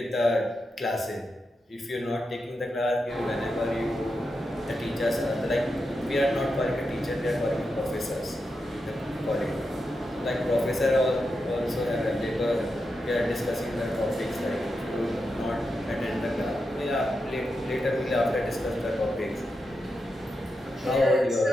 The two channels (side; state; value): both; normal; correlation 0.87